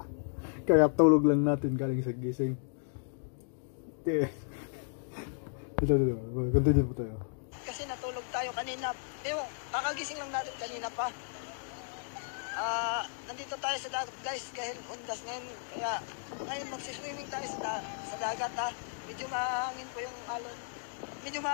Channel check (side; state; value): right; silent; digital silence